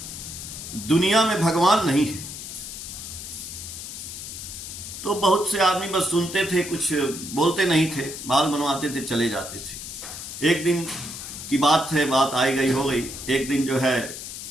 दुनिया में भगवान नहीं है। तो बहुत से आदमी बस सुनते थे, कुछ बोलते नहीं थे, बाल बनवाते थे, चले जाते थे। एक दिन की बात है, बात आई गई हो गई। एक दिन जो है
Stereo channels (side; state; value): left; noise; hiss, 9 dB below the sound